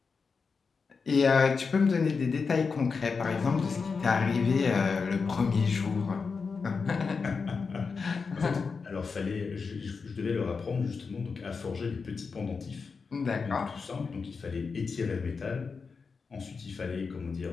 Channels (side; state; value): right; quieter; 5.0 dB